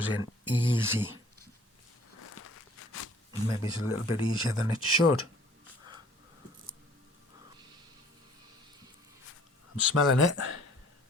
in easy. Maybe it's a little bit easier than it should. I'm smelling it.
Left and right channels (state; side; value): normal; both; correlation 0.54